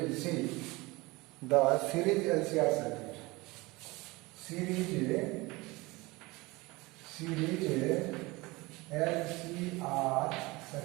will see the series LCR circuit. Series LCR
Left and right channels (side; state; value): left; quieter; 22.8 dB